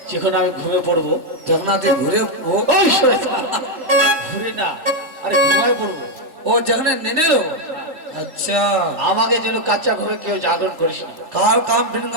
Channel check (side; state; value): left; late; 3.4 ms